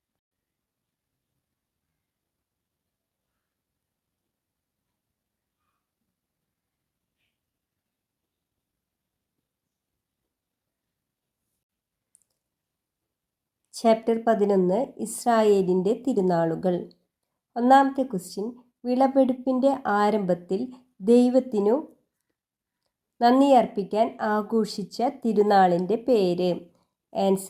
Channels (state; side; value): identical; both; correlation 1.00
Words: ചാപ്റ്റർ 11 ഇസ്രായേലിൻ്റെ തിരുനാളുകൾ. ഒന്നാമത്തെ ക്വസ്റ്റ്യൻ, വിളവെടുപ്പിൻ്റെ ആരംഭത്തിൽ ദൈവത്തിനു നന്ദി അർപ്പിക്കാൻ ആഘോഷിച്ച തിരുനാളിൻ്റെ പേര്?